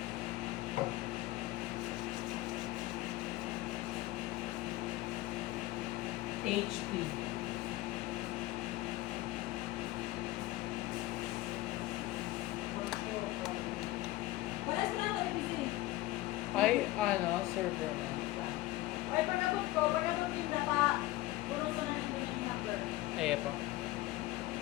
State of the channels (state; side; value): quieter; right; 17.7 dB